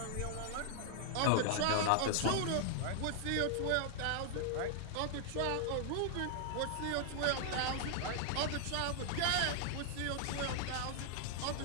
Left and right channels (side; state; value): both; different; correlation -0.01